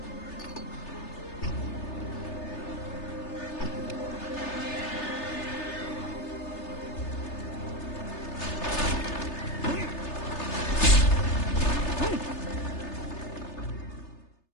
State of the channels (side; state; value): right; late; 3.3 ms